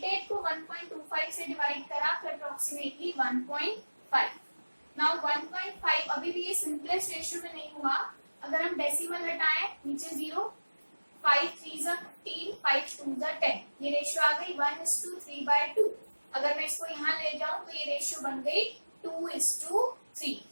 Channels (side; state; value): both; inverted; correlation -1.00